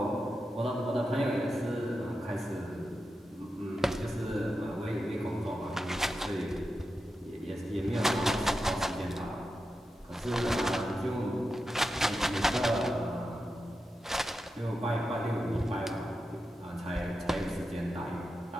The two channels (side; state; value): both; normal; correlation 0.89